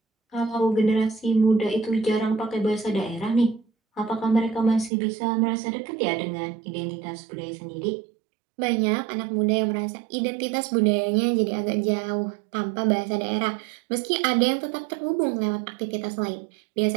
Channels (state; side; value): drops out; left; at 4.9 s